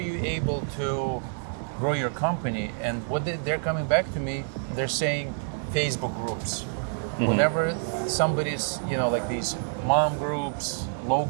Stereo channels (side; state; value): left; silent; digital silence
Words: able to grow your company? And they're coming back to me, they're saying Facebook groups. Whenever somebody's, like these mom groups,